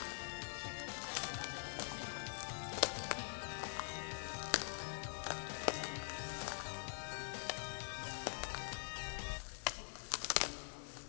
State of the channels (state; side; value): silent; right; digital silence